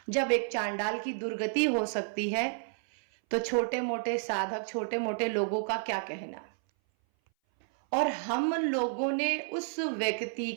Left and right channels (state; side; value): silent; left; 57 dB below the other